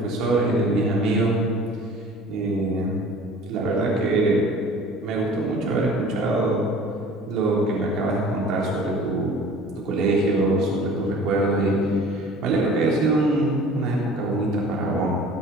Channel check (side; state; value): both; normal; correlation 0.46